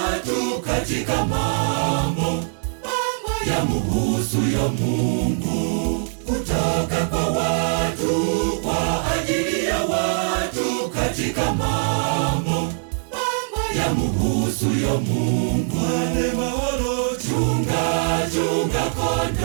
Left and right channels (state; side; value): silent; left; digital silence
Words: katika mambo yamuhusuyo Mungu, kutoka kwa watu, kwa ajili ya watu, katika mambo yamuhusuyo Mungu. Ane mahalo, chunga